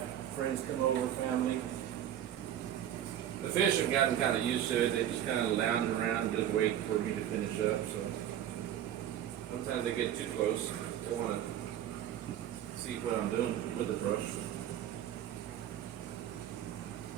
friends come over, family. The fish have gotten kind of used to it. They just kind of lounge around and just wait for me to finish up. So sometimes they get too close. They want to see what I'm doing with the brush.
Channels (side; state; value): left; quieter; 10.9 dB